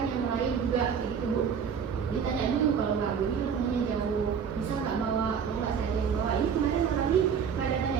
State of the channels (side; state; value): left; quieter; 7.0 dB